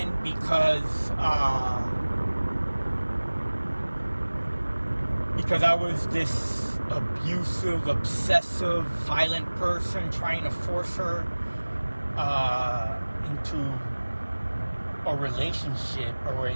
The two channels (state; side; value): inverted; both; correlation -1.00